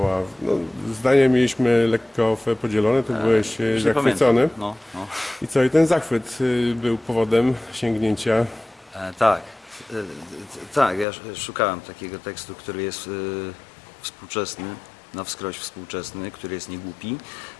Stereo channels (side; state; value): right; drops out; at 11.1 s